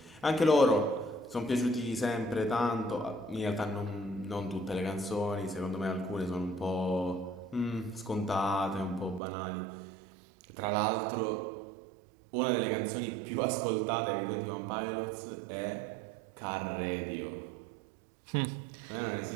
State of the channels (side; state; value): left; drops out; at 9.2 s